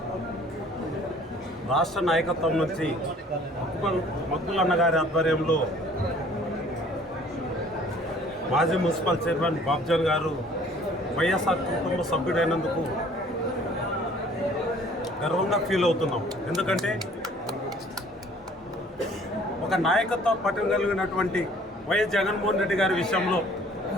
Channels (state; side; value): normal; both; correlation 0.54